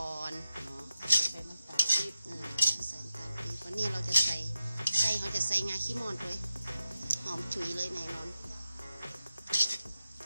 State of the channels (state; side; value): inverted; both; correlation -0.91